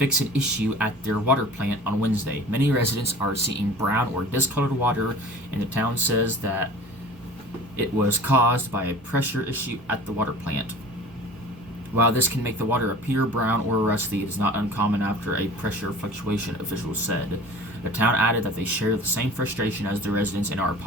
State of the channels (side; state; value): both; normal; correlation 0.42